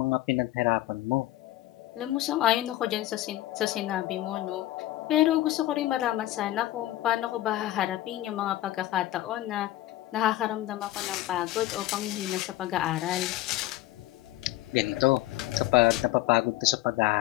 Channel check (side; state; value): right; quieter; 15.4 dB